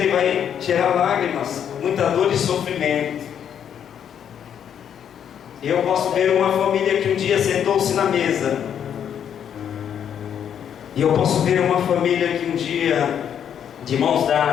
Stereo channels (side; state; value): right; quieter; 8.8 dB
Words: vai gerar lágrimas, muita dor e sofrimento. E eu posso ver uma família que um dia sentou-se na mesa, e eu posso ver uma família que um dia, de mãos